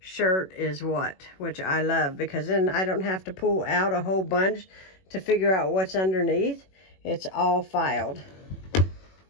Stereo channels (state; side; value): late; right; 21 ms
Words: is what, which I love, because then I don't have to pull out a whole bunch to figure out what's underneath. It's all filed.